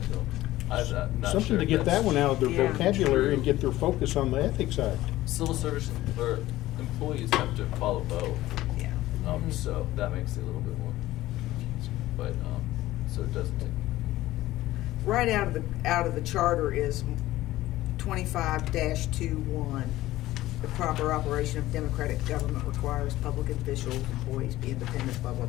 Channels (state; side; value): quieter; right; 16.1 dB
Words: I'm not something sure to if get that that's one out of their Yeah. vocabulary and true. get their focus on the Ethics Act. Civil service or employees have to follow both. Yeah. So that makes it a little bit more confusing. But so it doesn't take. Right out of the charter is 25-21. The proper operation of democratic government requires public officials, employees be independent, blah, blah,